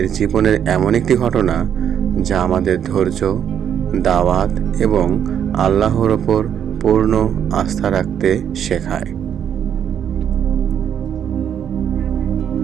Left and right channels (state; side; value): quieter; left; 8.9 dB